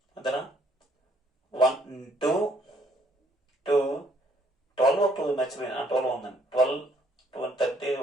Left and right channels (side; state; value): both; normal; correlation 0.66